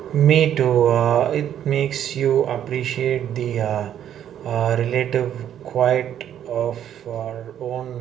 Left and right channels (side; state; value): left; quieter; 10.2 dB